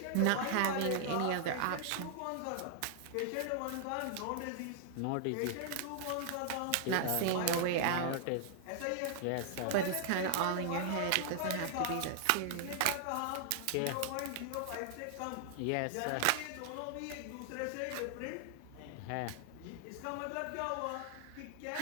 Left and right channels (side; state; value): both; different; correlation 0.00